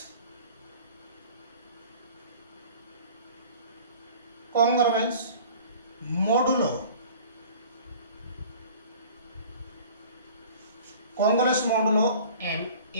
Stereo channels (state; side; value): inverted; both; correlation -0.46